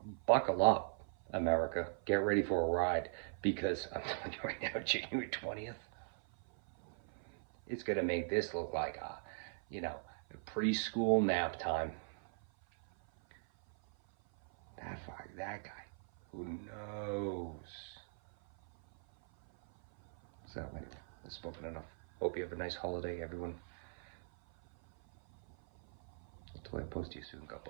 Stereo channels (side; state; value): left; silent; 51 dB below the other